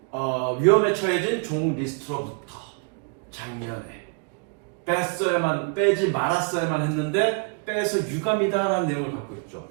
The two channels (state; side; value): quieter; left; 37.3 dB